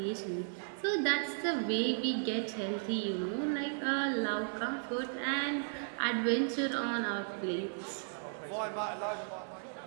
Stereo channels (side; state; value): left; silent; 54 dB below the other